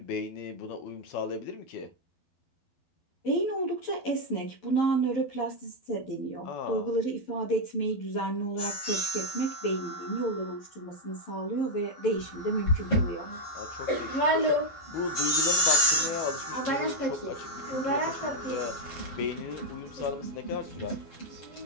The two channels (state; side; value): late; right; 12 ms